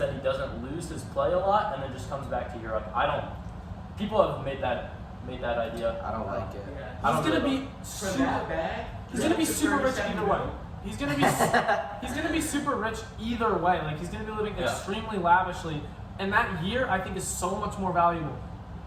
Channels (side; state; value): both; identical; correlation 1.00